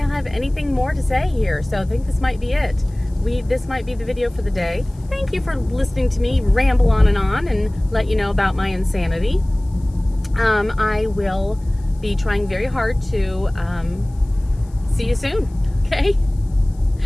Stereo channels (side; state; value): left; noise; hiss, 30 dB below the sound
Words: anything more to say here, so I think this might be it. This might be the video for the day. Thank you for listening to me ramble on and let you know about my insanity. I will be trying very hard to see you soon, okay?